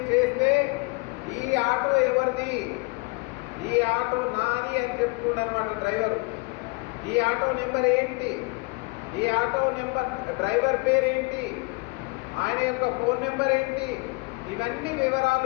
చేస్తే ఈ ఆటో ఎవరిది, ఈ ఆటో నాది అని చెప్తున్నారన్నమాట డ్రైవర్. ఈ ఆటో నెంబర్ ఏంటి, ఈ ఆటో నెంబర్ డ్రైవర్ పేరేంటి, ఆయన యొక్క ఫోన్ నెంబర్ ఏంటి, ఇవన్నీ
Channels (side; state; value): right; quieter; 28.5 dB